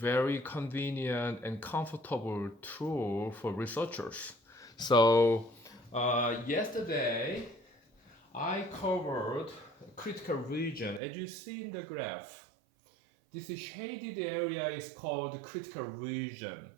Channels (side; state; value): left; drops out; at 11.0 s